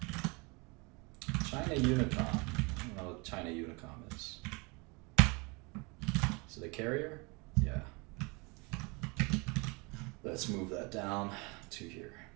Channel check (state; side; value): quieter; left; 28.4 dB